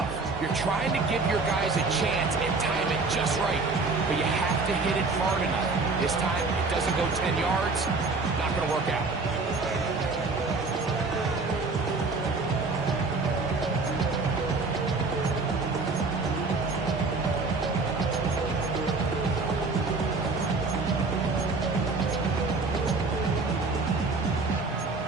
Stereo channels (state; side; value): quieter; left; 3.9 dB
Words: You're trying to give your guys a chance and time it just right, but you have to hit it hard enough. This time, it doesn't go 10 yards. Not going to work out.